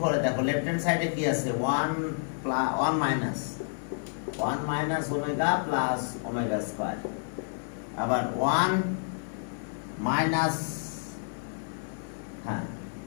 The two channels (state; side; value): silent; right; digital silence